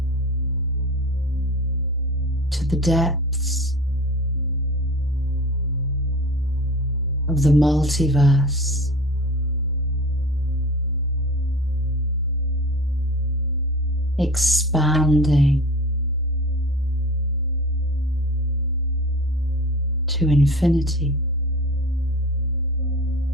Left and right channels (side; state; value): both; normal; correlation 0.36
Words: To the depths of the multiverse. expanding to infinity.